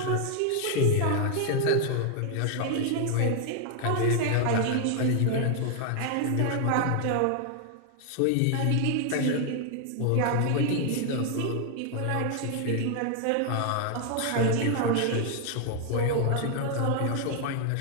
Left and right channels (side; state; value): both; different; correlation 0.00